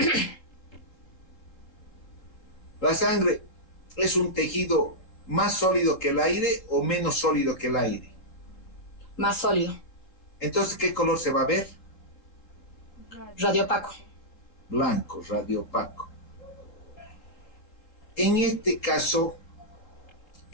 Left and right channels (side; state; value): right; late; 3.8 ms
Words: La sangre es un tejido más sólido que el aire o menos sólido que el aire. Más sólido. Entonces, ¿qué color se va a ver? radiopaco. Blanco, radiopaco. En este caso,